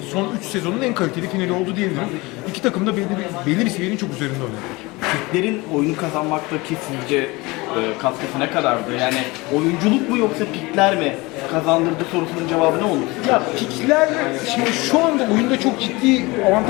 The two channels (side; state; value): right; quieter; 23.3 dB